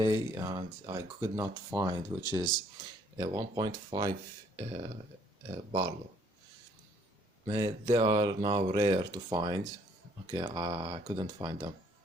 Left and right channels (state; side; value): normal; both; correlation 0.64